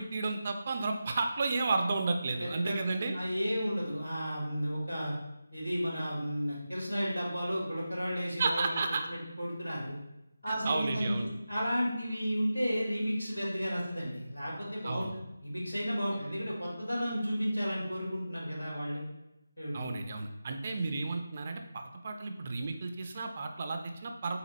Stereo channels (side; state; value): both; inverted; correlation -0.92